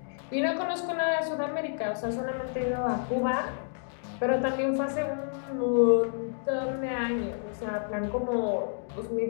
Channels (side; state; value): right; silent; digital silence